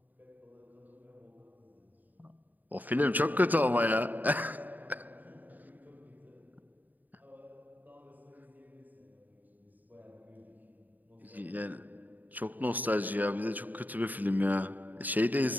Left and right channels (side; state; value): left; late; 0.084 ms